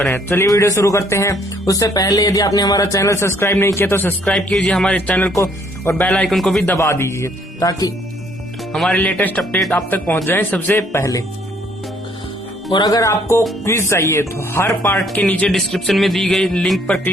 चलिए वीडियो शुरू करते हैं। उससे पहले यदि आपने हमारा चैनल सब्सक्राइब नहीं किया तो सब्सक्राइब कीजिए हमारे चैनल को और बेल आइकन को भी दबा दीजिए ताकि हमारे लेटेस्ट अपडेट आप तक पहुंच जाए सबसे पहले। और अगर आपको क्विज चाहिए तो हर पार्ट के नीचे डिस्क्रिप्शन में दी गई लिंक पर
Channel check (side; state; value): both; normal; correlation 0.64